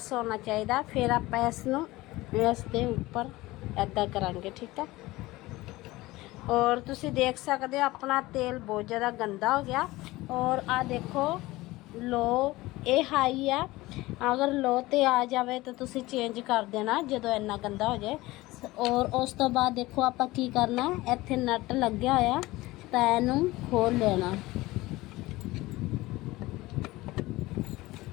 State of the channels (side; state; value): right; quieter; 19.3 dB